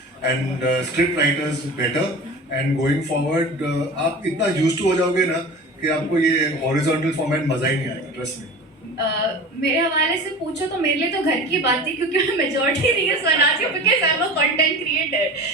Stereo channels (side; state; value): both; normal; correlation 0.35